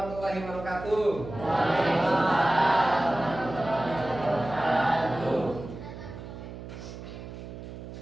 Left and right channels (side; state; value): right; noise; hum, 12 dB below the sound